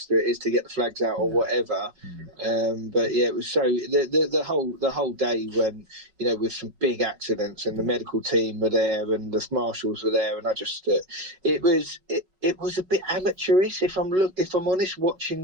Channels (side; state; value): left; late; 5.3 ms